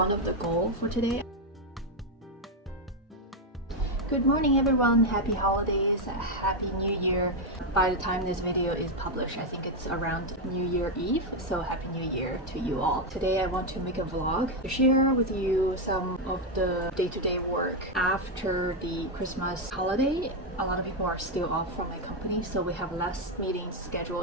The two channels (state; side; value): normal; both; correlation 0.04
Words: of the goals for today. Good morning everyone, happy holidays, happy new year. By the time this video is published, I think it's around New Year Eve, so happy new year to you all. Today I want to make a vlog to share with you some of the day-to-day work after the Christmas holiday. A lot of people are still off from my company, so we have less meetings